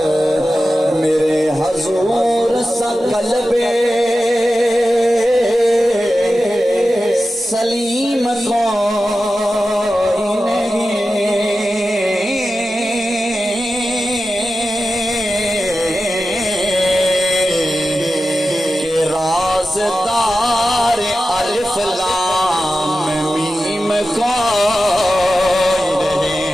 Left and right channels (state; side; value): normal; both; correlation 0.93